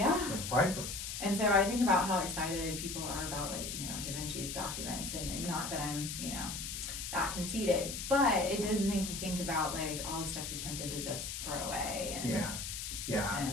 It's priceless. And so I think about how excited people are about, like, Da Vinci's documents, and not that I'm, that conceited, but it does make you think about, like, all the stuff you're tempted to just throw away. And,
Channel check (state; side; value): noise; left; hiss, 5 dB below the sound